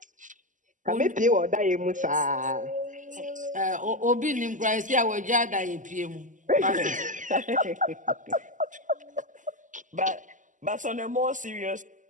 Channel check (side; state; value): left; late; 0.37 ms